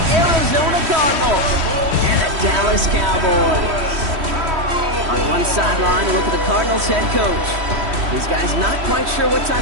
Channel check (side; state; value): left; late; 3.1 ms